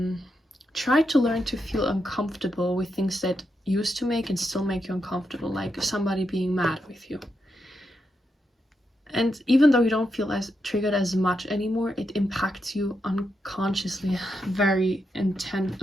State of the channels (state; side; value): normal; both; correlation 0.84